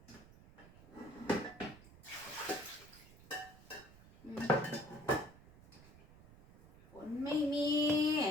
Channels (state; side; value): noise; right; rumble, 21 dB below the sound